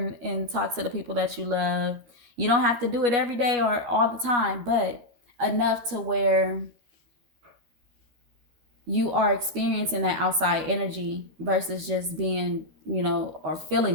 and talk to the people that you love. You don't have to do it every day or all the time, but enough to where you are experiencing that outside energy versus just being, or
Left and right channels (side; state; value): left; late; 12 ms